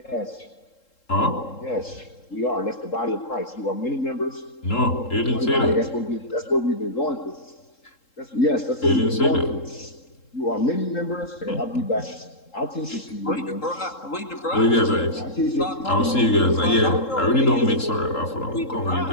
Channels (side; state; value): right; late; 3.7 ms